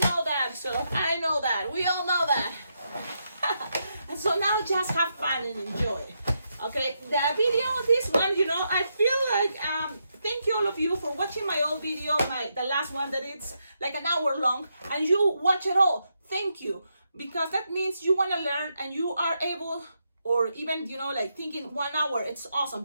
that, so I know that. We all know that. And so now just have fun and enjoy. Okay, the video, this one, you know, I feel like thank you all of you for watching my old video, the last one that it's like an hour long, and you watch it all. Thank you, because that means you want to learn and you are able, or even, you know, like thinking 1 hour, it's awesome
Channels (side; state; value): both; inverted; correlation -0.82